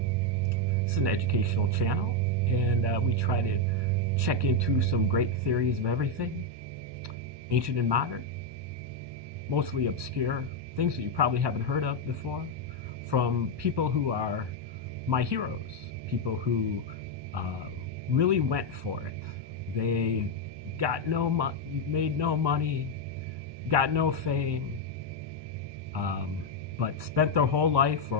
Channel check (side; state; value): left; late; 1.2 ms